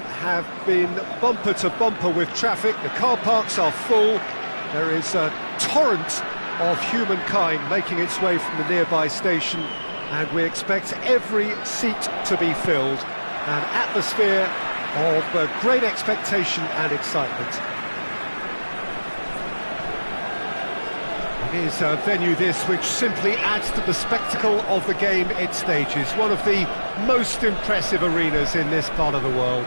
have been bumper to bumper with traffic. The car parks are full. There is a torrent of humankind making its way from the nearby station, and we expect every seat to be filled. An atmosphere of great expectation and excitement. It is a venue this which simply adds to the spectacle of the game it stages. One of the most impressive arenas in this part of the world.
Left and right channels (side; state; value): both; inverted; correlation -1.00